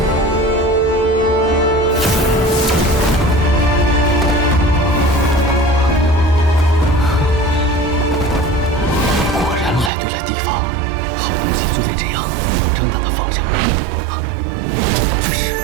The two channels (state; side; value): drops out; left; at 9.9 s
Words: 就得这样，正大的放。